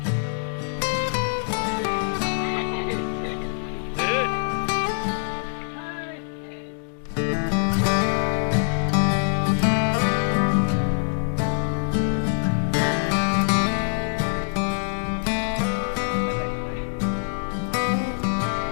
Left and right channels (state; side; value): silent; right; digital silence